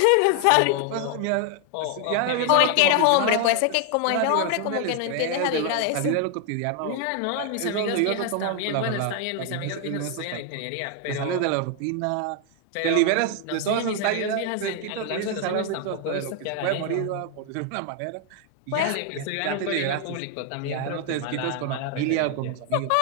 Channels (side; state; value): both; different; correlation 0.00